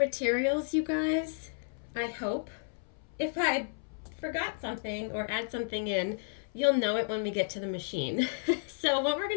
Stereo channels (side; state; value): right; silent; 56 dB below the other